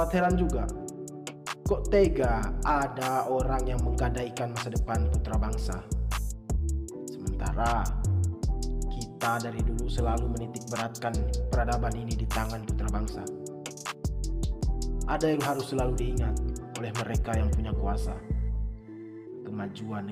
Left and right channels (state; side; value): identical; both; correlation 1.00